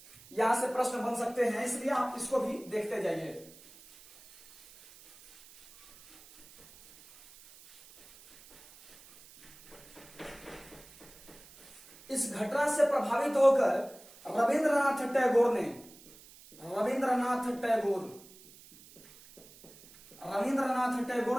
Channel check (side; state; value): right; noise; hiss, 22 dB below the sound